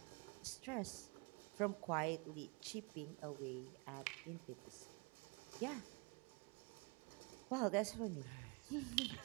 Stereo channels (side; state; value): left; quieter; 29.5 dB